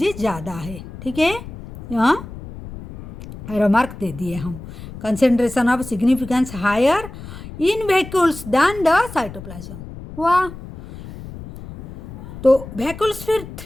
ज़्यादा है, ठीक है। यहाँ रिमार्क दे दिए हम, concentration of significance higher in vacuoles than the cytoplasm. वाह। तो वैक्यूल्स फिर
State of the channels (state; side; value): noise; left; rumble, 13 dB below the sound